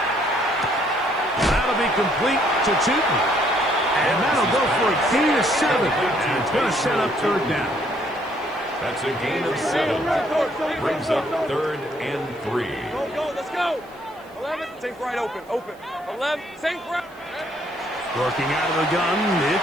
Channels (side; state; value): right; noise; hiss, 30 dB below the sound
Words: That'll be complete to Tootin. And that'll go for a gain of 7. And it's going to set up third down. That's a gain of 7. Brings up third and 3. Go, let's go. 11, sink right open. 11, sink right. Working out of the gun,